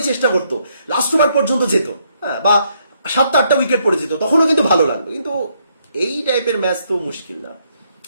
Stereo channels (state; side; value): inverted; both; correlation -0.73